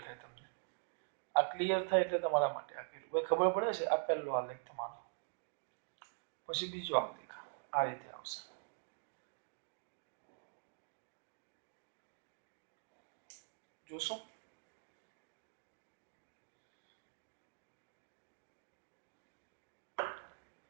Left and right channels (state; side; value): silent; left; digital silence